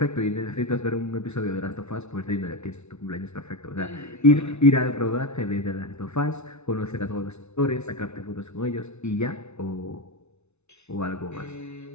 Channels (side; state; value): right; late; 0.81 ms